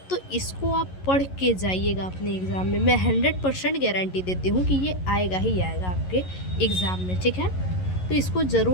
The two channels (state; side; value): late; right; 11 ms